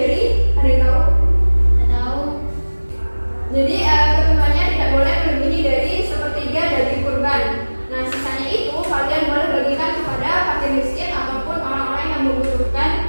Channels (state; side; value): inverted; both; correlation -1.00